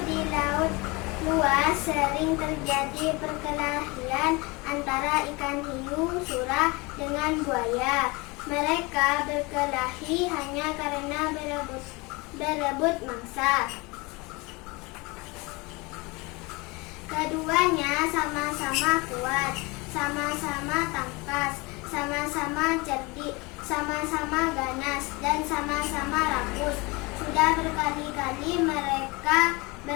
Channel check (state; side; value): quieter; right; 25.8 dB